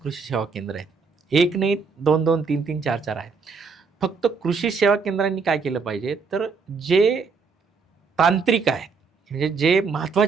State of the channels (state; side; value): quieter; left; 5.0 dB